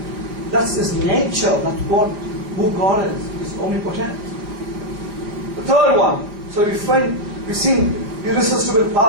that's his nature. That's who God is. He's omnipotent. The third one. So we've seen irresistible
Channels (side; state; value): left; late; 4.9 ms